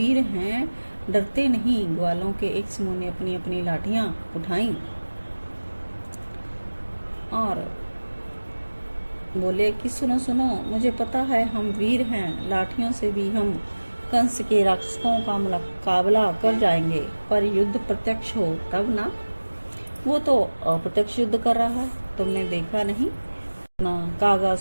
हैं, डरते नहीं। ग्वालों के एक समूह ने अपनी अपनी लाठियां उठाई और बोले कि सुनो सुनो, मुझे पता है हम वीर हैं, लाठियों से भी हम कंस के राक्षसों का मुकाबला कर जाएंगे। पर युद्ध प्रत्यक्ष हो तब ना। वो तो अप्रत्यक्ष युद्ध कर रहा है, तुमने देखा नहीं ना?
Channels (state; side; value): inverted; both; correlation -1.00